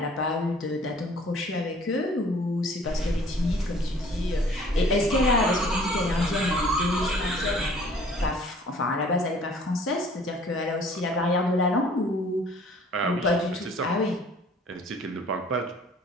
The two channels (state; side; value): normal; both; correlation 0.54